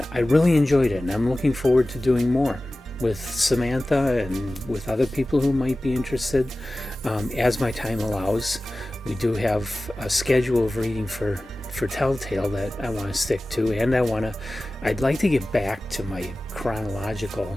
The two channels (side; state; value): both; normal; correlation 0.96